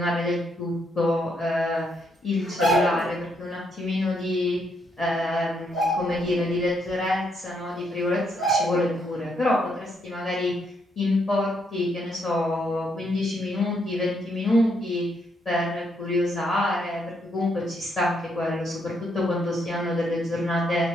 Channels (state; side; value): normal; both; correlation 0.75